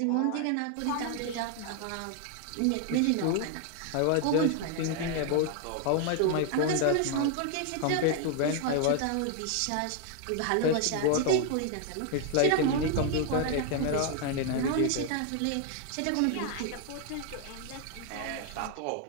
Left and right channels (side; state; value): both; different; correlation 0.00